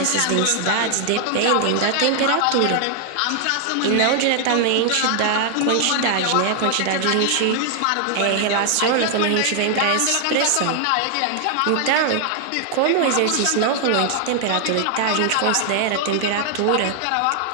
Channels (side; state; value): both; different; correlation 0.00